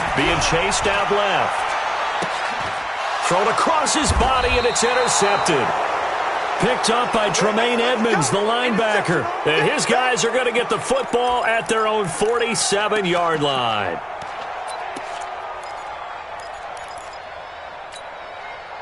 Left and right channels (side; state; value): both; identical; correlation 1.00